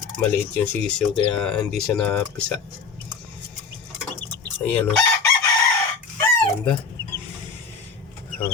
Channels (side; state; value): right; quieter; 5.2 dB